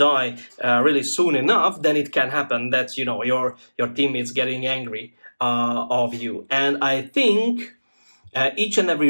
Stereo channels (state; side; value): inverted; both; correlation -1.00